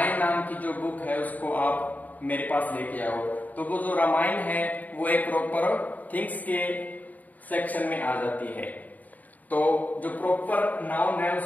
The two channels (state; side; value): late; right; 0.078 ms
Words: नाम की जो बुक है उसको आप मेरे पास लेके आओ, तो वो जो रामायण है वो एक प्रॉपर थिंग्स के सेक्शन में आ जाती है। तो जो प्रॉपर नाउन है